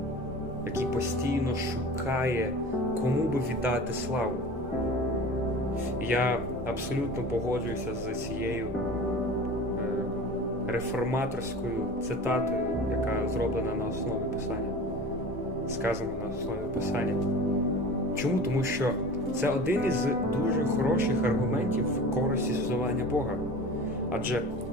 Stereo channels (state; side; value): normal; both; correlation 0.37